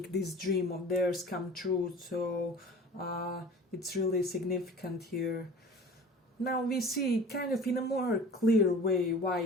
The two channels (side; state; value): both; normal; correlation 0.41